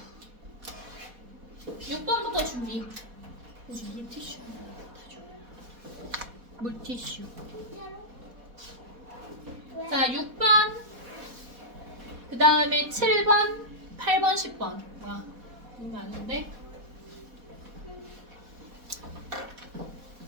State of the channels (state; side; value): late; left; 4.1 ms